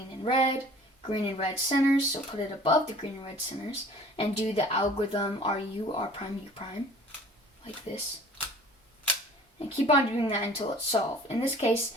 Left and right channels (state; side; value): normal; both; correlation 0.49